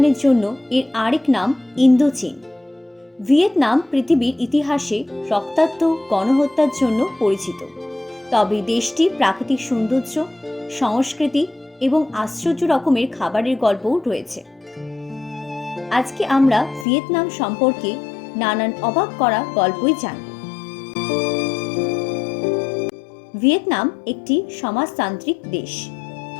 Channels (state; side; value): drops out; right; at 16.9 s